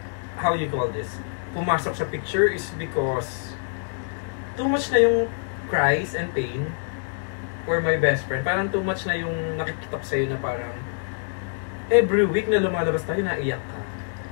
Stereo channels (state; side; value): silent; right; digital silence